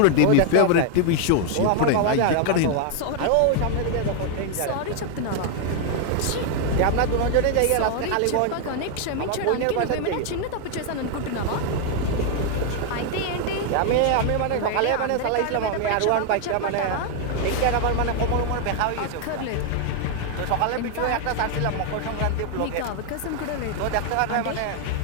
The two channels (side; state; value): both; different; correlation 0.00